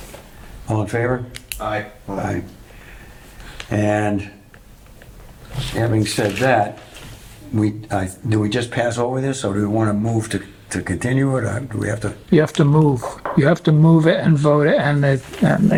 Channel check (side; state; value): both; identical; correlation 1.00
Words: All in favor? Aye. Aye. And having said that, do we just pass over this, or do we want to move to continue it, or do we have to? You have to move. You have to move it and vote it, and